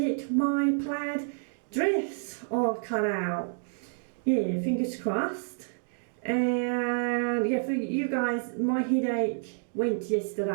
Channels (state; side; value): silent; left; digital silence